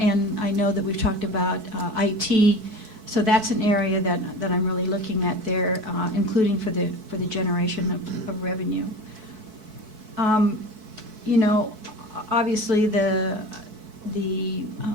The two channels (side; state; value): left; late; 4.6 ms